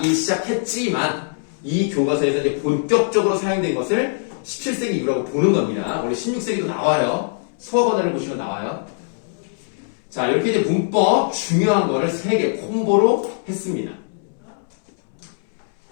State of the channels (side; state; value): right; silent; 65 dB below the other